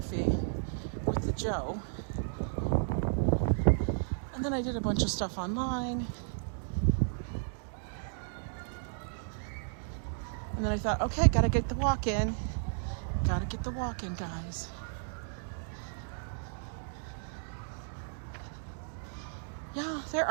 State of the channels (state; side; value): silent; left; digital silence